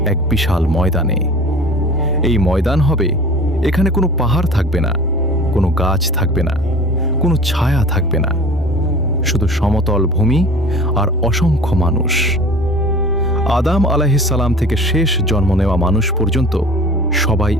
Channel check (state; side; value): normal; both; correlation 0.42